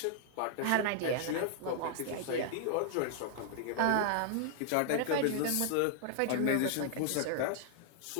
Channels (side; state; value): both; different; correlation 0.00